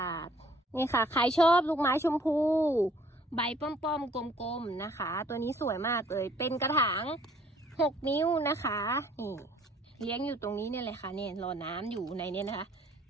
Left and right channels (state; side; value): normal; both; correlation 0.59